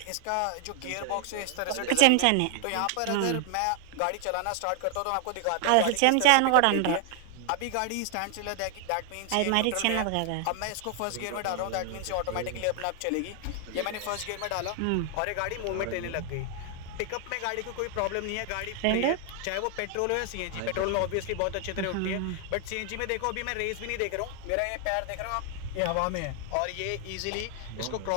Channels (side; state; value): both; different; correlation 0.00